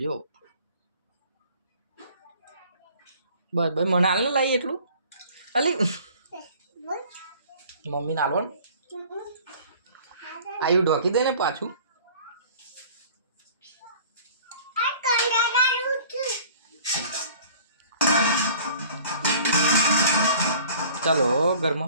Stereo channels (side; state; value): both; inverted; correlation -0.49